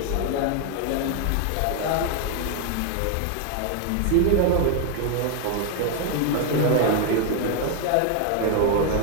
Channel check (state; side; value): different; both; correlation 0.00